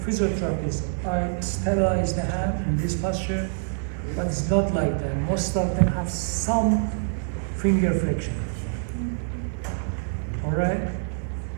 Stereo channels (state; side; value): silent; left; 61 dB below the other